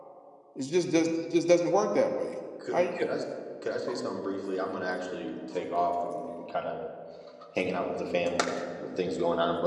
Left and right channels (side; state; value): both; identical; correlation 1.00